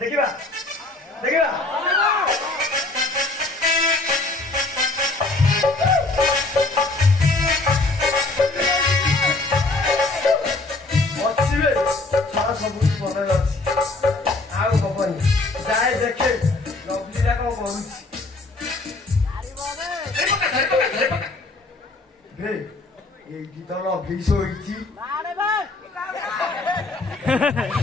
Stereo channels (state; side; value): quieter; right; 3.2 dB